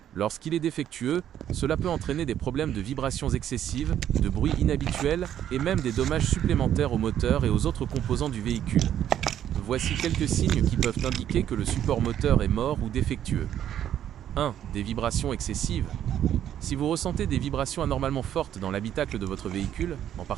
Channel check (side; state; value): left; quieter; 10.5 dB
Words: Lorsqu'il est défectueux, cela peut entraîner des problèmes de vibrations excessives, de bruit inhabituel et même des dommages supplémentaires au moteur et aux autres composants du véhicule. Voici quelques signes qui peuvent indiquer que le support moteur est mort ou défectueux. 1. Des vibrations excessives. Si vous ressentez des vibrations anormalement fortes dans l'habitacle de votre véhicule, en